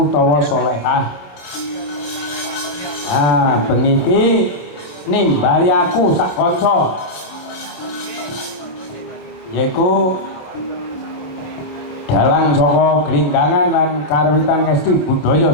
solehah. Bengi iki nimbali aku sak kanca yaiku dalang saka Glinggangan lan karwitan ngesti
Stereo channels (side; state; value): right; late; 27 ms